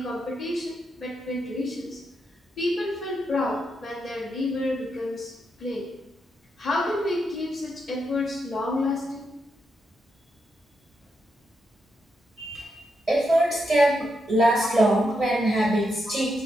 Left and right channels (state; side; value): normal; both; correlation 0.82